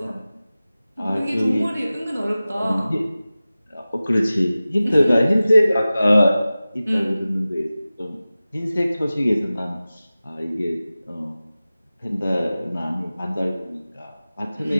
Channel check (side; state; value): both; inverted; correlation -0.96